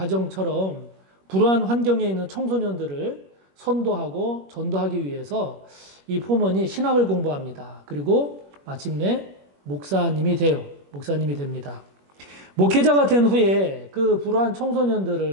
불우한 환경에 있는 청소년들을 선도하고 전도하기 위해서 이 포먼이 신학을 공부합니다. 그리고 마침내 목사님이 됩니다. 목회자가 된 후에 그 불우한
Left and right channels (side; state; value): left; late; 21 ms